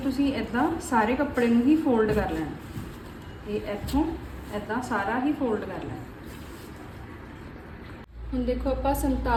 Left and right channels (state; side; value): identical; both; correlation 1.00